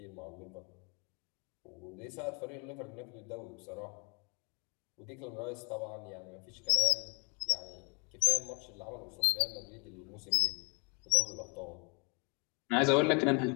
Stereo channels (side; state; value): right; quieter; 31.8 dB